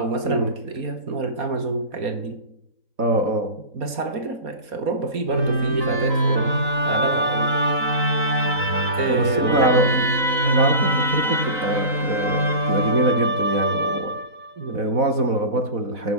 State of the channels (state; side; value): late; left; 3.9 ms